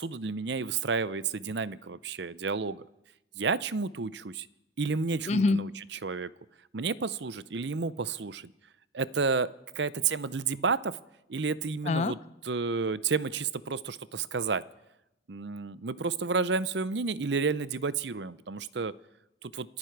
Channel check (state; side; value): quieter; left; 3.2 dB